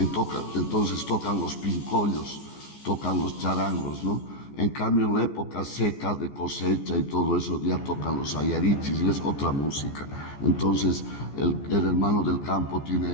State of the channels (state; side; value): late; right; 14 ms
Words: tocan los pincollos, tocan los charangos, ¿no? En cambio, en la época seca de cosecha y todo eso, ya tocan los ayarichis y es otra música. Entonces, el hermano del campo